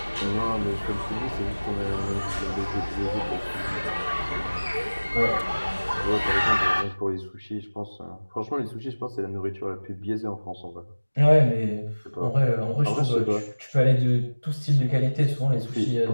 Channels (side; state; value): both; inverted; correlation -1.00